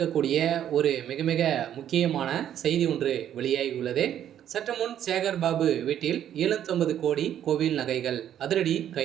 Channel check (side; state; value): left; quieter; 10.4 dB